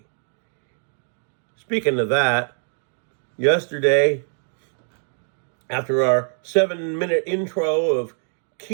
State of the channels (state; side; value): silent; left; digital silence